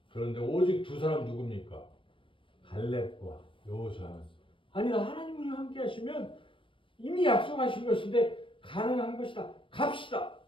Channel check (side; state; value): right; late; 0.25 ms